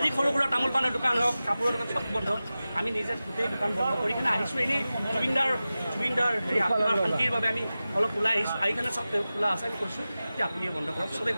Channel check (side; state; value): both; inverted; correlation -0.95